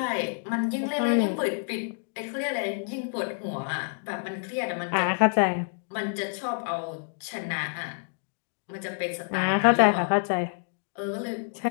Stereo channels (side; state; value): right; silent; digital silence